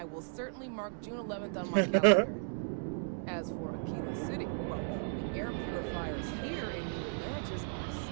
will certainly mark June 11th on my calendar. As for Aquila City, well, the air purifiers here in New Atlantis are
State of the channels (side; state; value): left; silent; digital silence